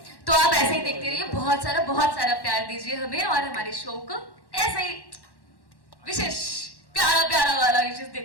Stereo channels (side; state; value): right; late; 1.1 ms